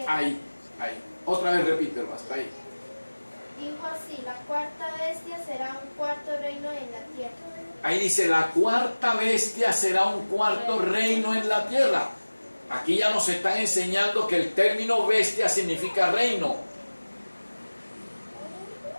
Ahí. Otra vez repítelo, hasta ahí. Dijo así, la cuarta bestia será un cuarto reino en la tierra. Ahí dice, la cuarta bestia será un cuarto reino en la tierra. Aquí ya nos están enseñando que el término bestia significa reino.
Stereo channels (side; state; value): both; inverted; correlation -1.00